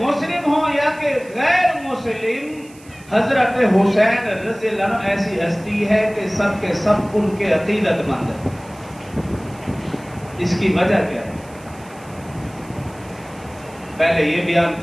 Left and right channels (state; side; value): noise; right; hiss, 24 dB below the sound